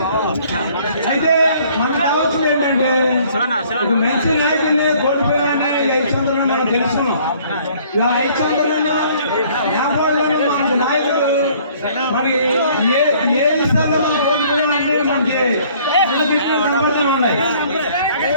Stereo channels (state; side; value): inverted; both; correlation -0.58